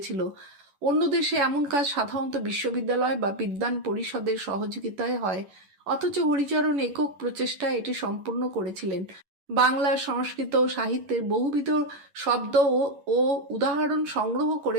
অন্য দেশে এমন কাজ সাধারণত বিশ্ববিদ্যালয় বা বিদ্বান পরিষদের সহযোগিতায় হয়, অথচ হরিচরণ একক প্রচেষ্টায় এটি সম্পূর্ণ করেছিলেন। বাংলা, সংস্কৃত ও সাহিত্যের বহুবিধ শব্দ ও উদাহরণ সংগ্রহ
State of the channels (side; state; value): left; late; 11 ms